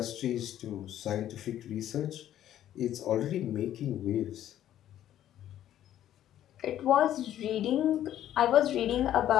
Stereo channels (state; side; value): quieter; right; 11.8 dB